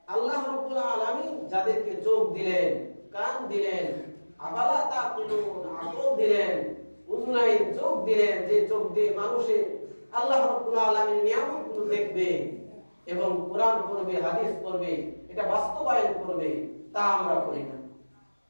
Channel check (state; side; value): inverted; both; correlation -1.00